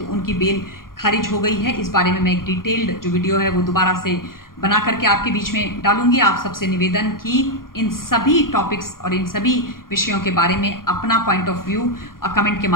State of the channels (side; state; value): right; late; 0.91 ms